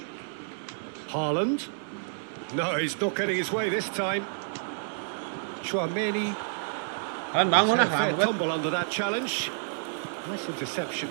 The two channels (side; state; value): left; silent; 58 dB below the other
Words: Haaland. No, he's not getting his way this time. Chouameni. Kalian bangun ah, Fair lambat. tumble under that challenge. Nice interception.